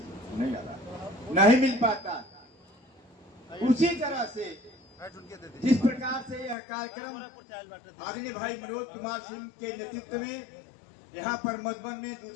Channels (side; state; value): right; drops out; at 6.6 s